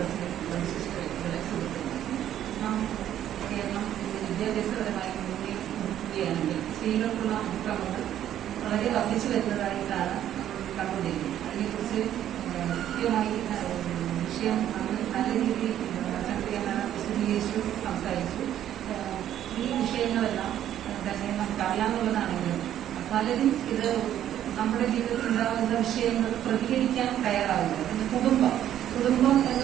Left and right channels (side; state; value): left; quieter; 11.2 dB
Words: വിദ്യാഭ്യാസപരമായി നോക്കുകയാണെങ്കിൽ സ്ത്രീകൾക്കുള്ള അതിക്രമങ്ങൾ വളരെ വർദ്ധിച്ചു വരുന്നതായിട്ടാണ് കണ്ടുകൊണ്ടിരിക്കുന്നത്. അതിനെക്കുറിച്ച് കൃത്യമായി വിഷയം നല്ല രീതിയിൽ വിശദീകരിച്ചു സംസാരിച്ചു. ഈ വിഷയങ്ങളെല്ലാം തന്നെ നമുക്ക് അറിയാവുന്നതാണെങ്കിലും പലരും ഇത് നമ്മുടെ ജീവിതത്തിൽ ഉണ്ടാകുന്ന വിഷയങ്ങൾ പ്രതികരിക്കാൻ തയ്യാറാവില്ല. കുടുംബം